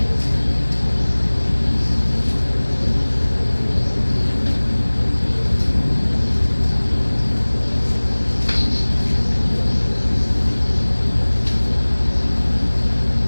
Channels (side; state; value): both; inverted; correlation -1.00